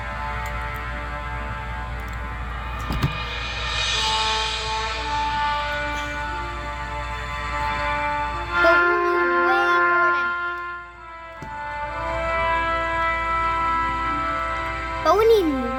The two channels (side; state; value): both; identical; correlation 1.00